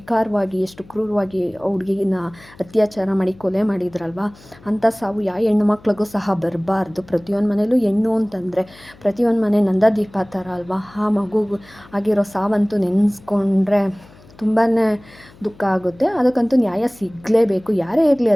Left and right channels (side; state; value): left; noise; hum, 24 dB below the sound